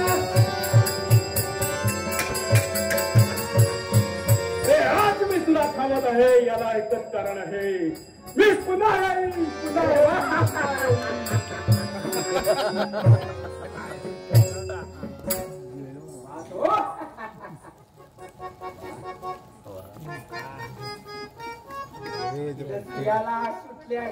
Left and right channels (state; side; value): identical; both; correlation 1.00